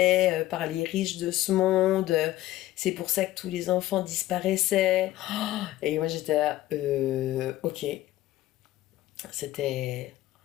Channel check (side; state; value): right; quieter; 15.5 dB